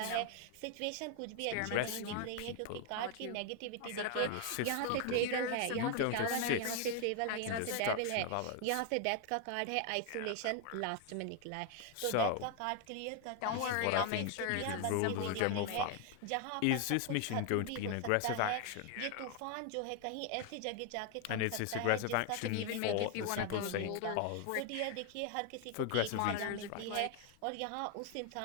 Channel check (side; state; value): both; different; correlation 0.01